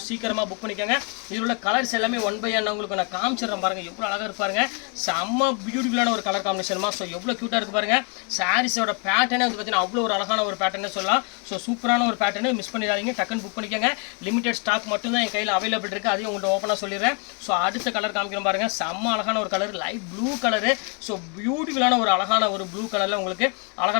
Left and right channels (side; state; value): right; quieter; 34.1 dB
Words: சீக்கிரமாக புக் பண்ணிக்கோங்க. இதில் உள்ள கலர்ஸ் எல்லாமே 1/1 உங்களுக்கு நான் காமிச்சிடுறேன் பாருங்கள், எவ்வளோ அழகாக இருப்பாருங்க. செம்ம பியூட்டிஃபுல்லான ஒரு கலர் காம்பினேஷன்மா. ஸோ எவ்வளோ க்யூட்டாக இருக்கு பாருங்கள். சாரீஸோட பேட்டர்னே வந்து பார்த்தீங்கன்னா அவ்வளோ ஒரு அழகான ஒரு பேட்டர்னே சொல்லலாம். ஸோ சூப்பரான ஒரு பேட்டர்னு மிஸ் பண்ணிடாதீங்க, டக்குன்னு புக் பண்ணிக்கோங்க. லிமிடெட் ஸ்டாக் மட்டும் தான் என் கையில் அவைலபிள் இருக்குது, அதையும் உங்கள்கிட்ட ஓப்பனாக சொல்லிடுறேன். ஸோ அடுத்த கலர் காமிக்கிறோம் பாருங்கள், செம்ம அழகான ஒரு colour, light blue colour. So பியூட்டிஃபுல்லான ஒரு அழகான ஒரு ப்ளூ கலரில் உங்களுக்கு